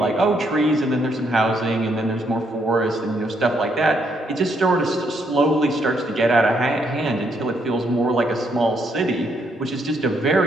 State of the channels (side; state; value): both; normal; correlation 0.74